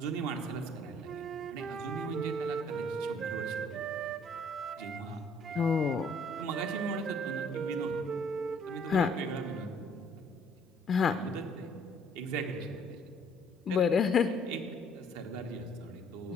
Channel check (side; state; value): both; normal; correlation 0.60